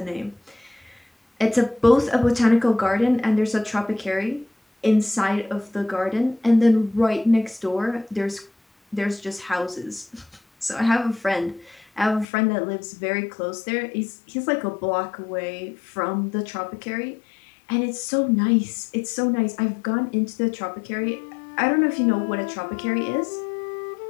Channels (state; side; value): drops out; right; at 12.2 s